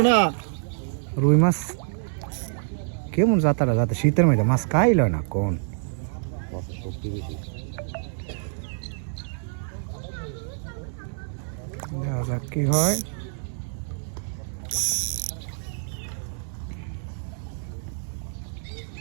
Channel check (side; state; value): left; silent; digital silence